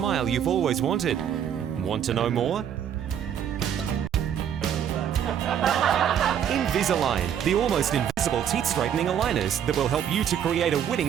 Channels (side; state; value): left; quieter; 9.1 dB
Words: you've always wanted. Want to know more? Invisalign, the almost invisible teeth straightening aligners that will help you to create a winning